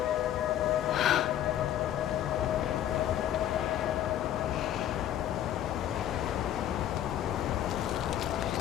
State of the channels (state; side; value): quieter; right; 11.4 dB